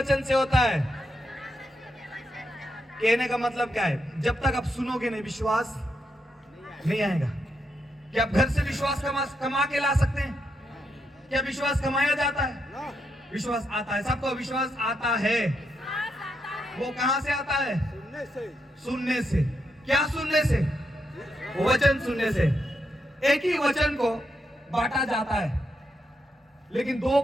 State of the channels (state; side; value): normal; both; correlation 0.81